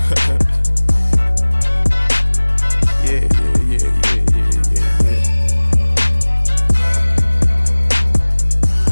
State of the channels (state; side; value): inverted; both; correlation -1.00